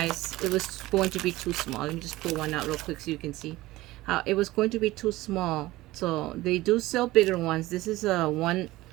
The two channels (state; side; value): quieter; left; 18.1 dB